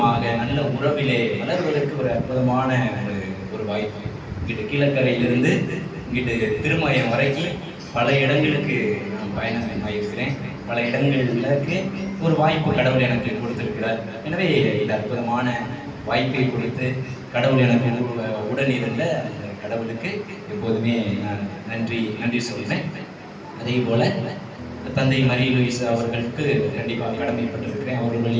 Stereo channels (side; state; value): both; identical; correlation 1.00